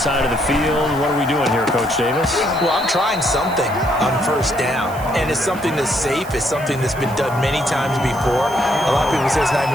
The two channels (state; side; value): noise; right; hiss, 19 dB below the sound